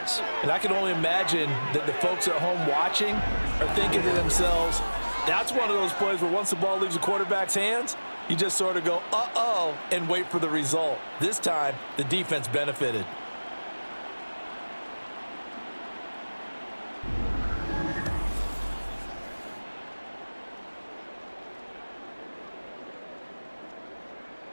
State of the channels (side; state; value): both; inverted; correlation -1.00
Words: And I can only imagine that the folks at home watching are thinking to themselves, that's one of those plays where once the ball leaves the quarterback's hands, you just sort of go, uh-oh, and wait for the result. This time, the defense benefited.